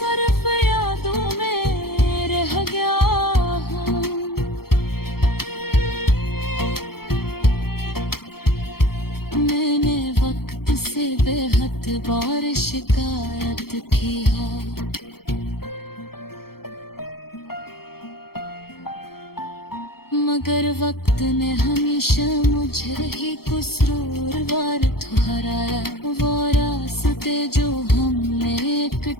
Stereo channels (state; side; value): late; right; 0.94 ms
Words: बेहद बार शिकायत की है, मगर वक्त ने हमेशा मुझे ही कसूरवार ठहराया। वो रास्ते जो हमने